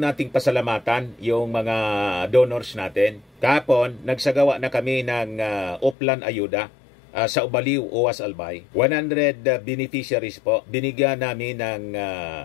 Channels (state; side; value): drops out; right; at 6.0 s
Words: nating pasalamatan yung mga donors natin. Kahapon, nagsagawa na kami ng Uplan Ayuda sa Ubaliw, Uwas Albay. 100 beneficiaries po. Binigyan namin ng